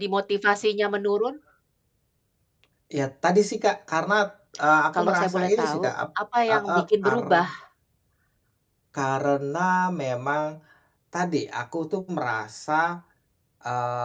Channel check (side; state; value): both; identical; correlation 1.00